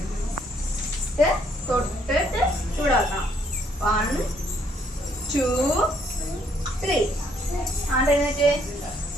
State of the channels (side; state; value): both; normal; correlation 0.68